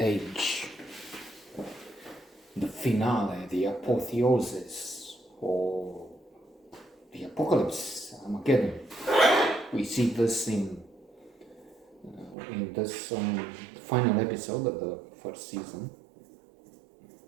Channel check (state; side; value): drops out; left; at 12.4 s